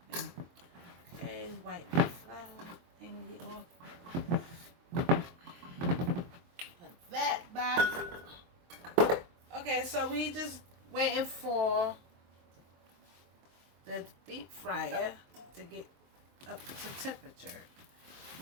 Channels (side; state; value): left; late; 23 ms